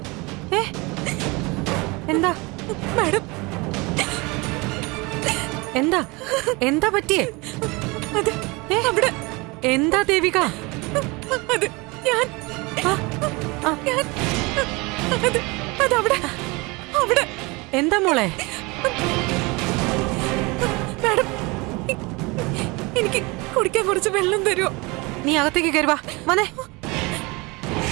എന്താ മാഡം? എന്താ എന്താ പറ്റിയേ? അവിടെ എന്താ ദേവിക? അത് ഞാൻ അതവിടെ അവിടെ. എന്താ മോളെ? മാഡം, എനിക്ക് കുടിക്കാൻ കുറച്ച് വെള്ളം തരുമോ? നീ അകത്തേക്ക് കയറുവാ. വന്നേ.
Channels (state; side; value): quieter; left; 25.6 dB